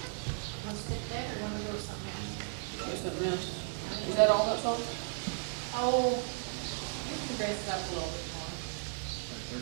Wanna stick there or wanna go to something else? Or something else. Is that all that song? Oh, you can dress it up a little bit more.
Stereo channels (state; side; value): silent; left; 54 dB below the other